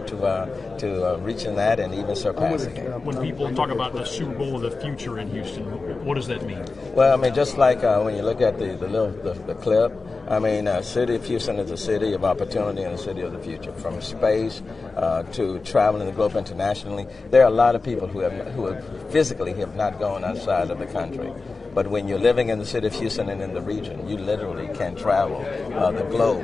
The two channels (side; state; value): right; quieter; 3.9 dB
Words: to reaching that and even surpassing it. When people talk about the Super Bowl of the future in Houston, what does that mean? Well, I mean, just like when you look at the clip, I mean, city of Houston is a city of opportunity and a city of the future. From space to traveling the globe internationally, there are a lot of people who physically have not gone outside of the country. But when you're living in the city of Houston and in the region, you literally can travel the